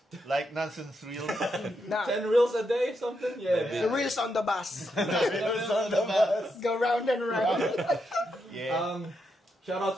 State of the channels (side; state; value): both; normal; correlation 0.82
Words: Like nonsense reels. Nah, 10 reels a day, something? Yeah. the wheels on the bus. Reels on the bus. Go round and round. Yeah. Shout